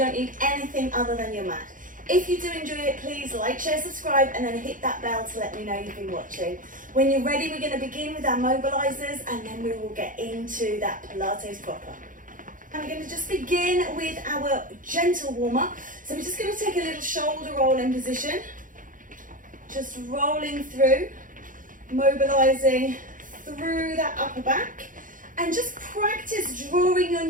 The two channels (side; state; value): left; late; 0.39 ms